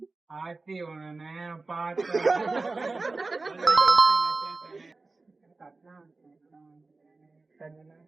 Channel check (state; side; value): quieter; left; 3.6 dB